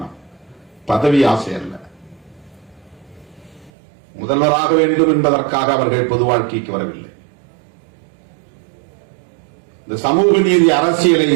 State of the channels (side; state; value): left; drops out; at 3.7 s